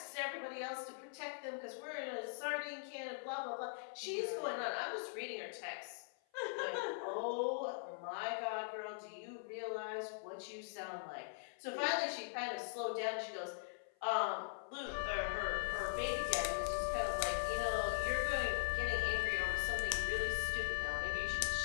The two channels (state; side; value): silent; right; 50 dB below the other